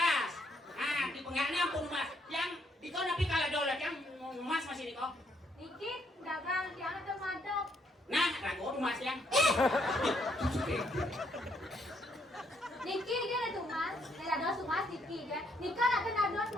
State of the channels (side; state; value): both; normal; correlation 0.72